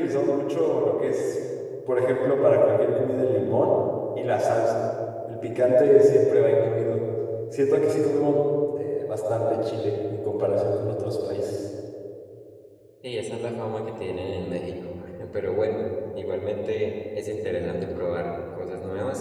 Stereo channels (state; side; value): identical; both; correlation 1.00